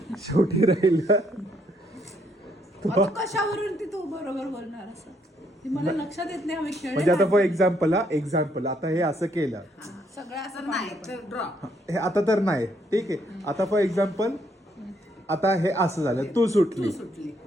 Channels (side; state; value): both; normal; correlation 0.71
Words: शेवटी राहिलं आता कशावरून ती तू बरोबर बोलणार असं ते मला लक्षात येत नाही. आम्ही म्हणजे आता फॉर खेळले एक्झाम्पल आता हे असं केलं, सगळं असं नाही तर ड्रॉ. हे आता तर नाही. ठीक आहे, आता फॉर एक्झाम्पल आता हे असं झालं, तू सुटली.